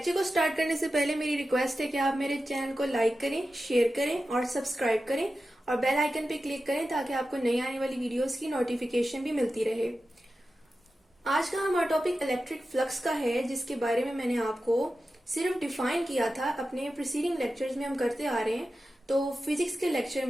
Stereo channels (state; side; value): normal; both; correlation 0.92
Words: को स्टार्ट करने से पहले मेरी रिक्वेस्ट है कि आप मेरे चैनल को लाइक करें, शेयर करें और सब्सक्राइब करें और बेल आइकन पे क्लिक करें ताकि आपको नई आने वाली वीडियोस की नोटिफिकेशन भी मिलती रहे। आज का हमारा टॉपिक इलेक्ट्रिक फ्लक्स का है, जिसके बारे में मैंने आपको सिर्फ डिफाइन किया था। अपने प्रीसीडिंग लेक्चर्स में हम करते आ रहे हैं। तो फिजिक्स के लेक्चर